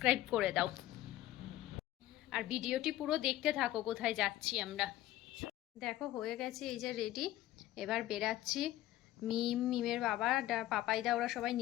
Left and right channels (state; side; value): quieter; right; 14.9 dB